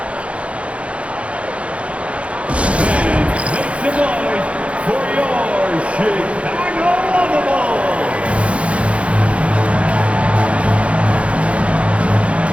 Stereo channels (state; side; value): late; left; 0.062 ms